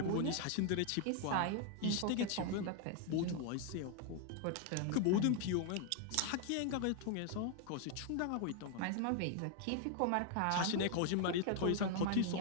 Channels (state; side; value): different; both; correlation 0.00